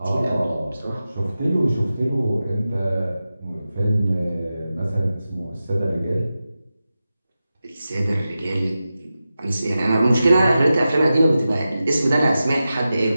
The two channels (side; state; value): both; inverted; correlation -0.93